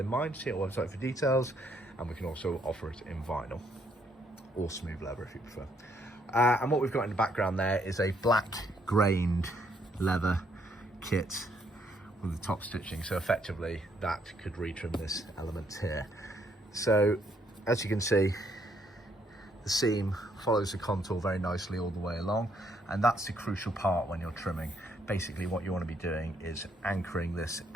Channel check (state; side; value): normal; both; correlation 0.71